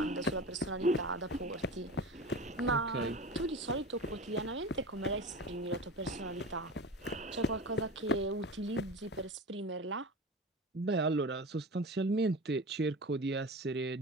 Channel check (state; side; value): normal; both; correlation 0.31